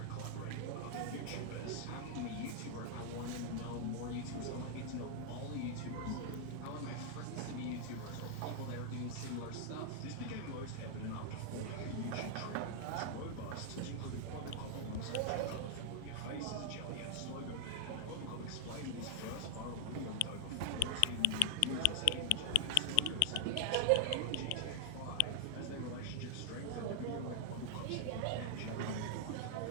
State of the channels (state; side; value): different; both; correlation 0.00